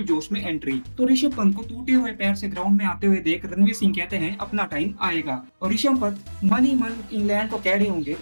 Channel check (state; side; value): inverted; both; correlation -1.00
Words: जोश में एंट्री। तो ऋषभ पंत को टूटे हुए पैर से ग्राउंड में आते हुए देख रणवीर सिंह कहते हैं अपना टाइम आएगा। और ऋषभ पंत मन ही मन इंग्लैंड को कह रहे होंगे